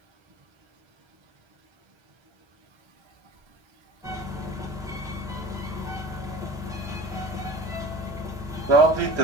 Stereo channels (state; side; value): normal; both; correlation 0.38